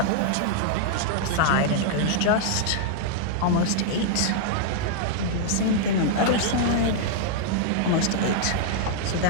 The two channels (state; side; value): different; both; correlation -0.01